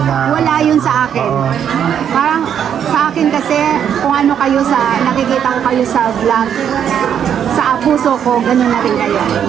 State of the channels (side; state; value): left; quieter; 8.8 dB